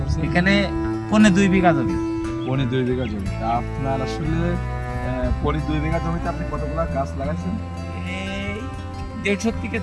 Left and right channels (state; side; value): identical; both; correlation 1.00